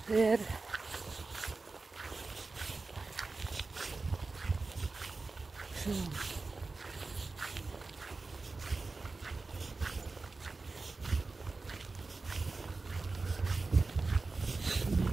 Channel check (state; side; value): quieter; left; 3.8 dB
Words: Det er det. Så.